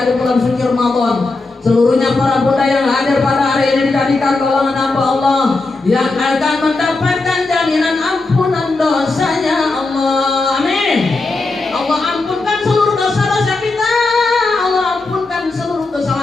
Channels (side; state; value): right; quieter; 3.4 dB